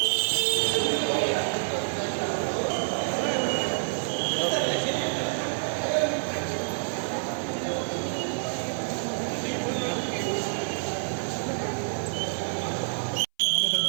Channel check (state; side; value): silent; left; 60 dB below the other